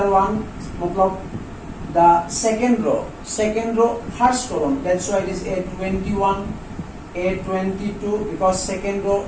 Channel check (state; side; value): identical; both; correlation 1.00